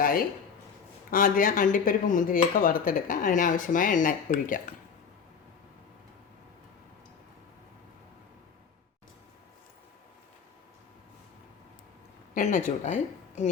ആദ്യം അണ്ടിപ്പരിപ്പ് മുന്തിരിയൊക്കെ വറുത്തെടുക്കാം. അതിനാവശ്യമായ എണ്ണ ഒഴിക്കാം. എണ്ണ ചൂടായി.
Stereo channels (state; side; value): quieter; right; 6.4 dB